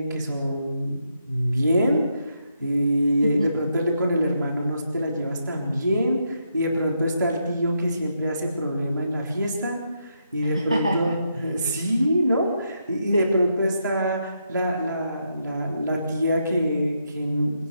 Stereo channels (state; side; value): inverted; both; correlation -0.80